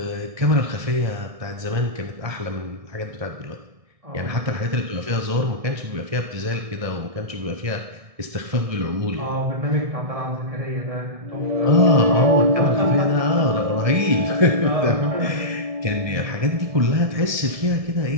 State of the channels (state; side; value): late; left; 1.7 ms